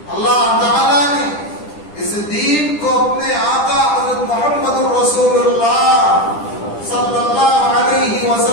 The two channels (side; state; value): right; late; 10 ms